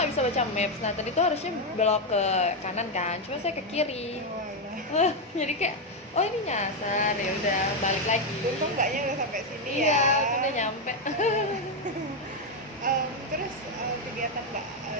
bisa baca maps. Nah tadi tuh harusnya belok ke kanan kan, cuma saya ke kiri. Oh, alah. Jadi kayak, oh ini nyasar, ya udah balik lagi. Untung Mbaknya udah sampai sini Iya, ya. tuh udah nyampe. Terus kegiatan Mbak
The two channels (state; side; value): normal; both; correlation 0.04